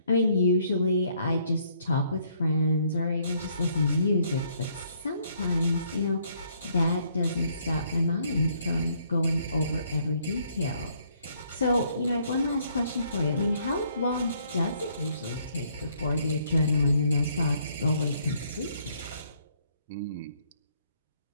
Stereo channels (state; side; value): inverted; both; correlation -0.68